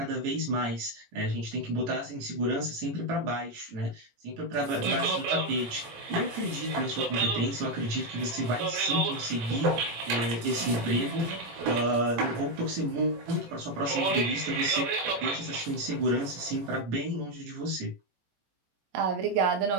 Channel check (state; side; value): late; left; 18 ms